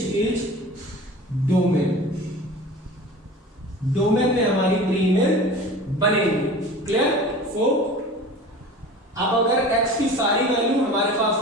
is domain. Domain में हमारी प्री इमेज बनेगी। क्लियर? सो अब अगर x की सारी वैल्यू हमारे पास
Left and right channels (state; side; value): normal; both; correlation 0.38